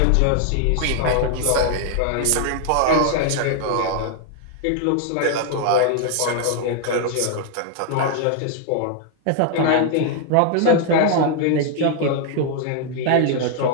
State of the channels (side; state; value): both; different; correlation 0.00